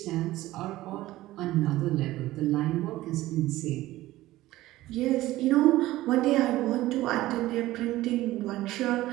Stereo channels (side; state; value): left; quieter; 16.5 dB